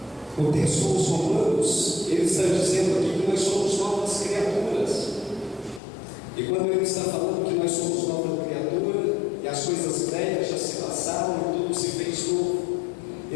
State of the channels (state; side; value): drops out; right; at 5.8 s